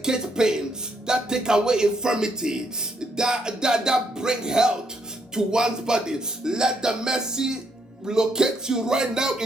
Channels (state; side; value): normal; both; correlation 0.74